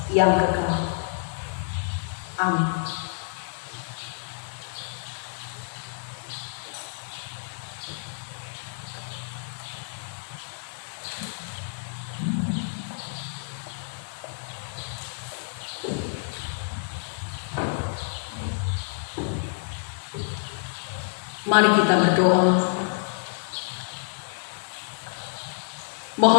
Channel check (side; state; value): right; silent; digital silence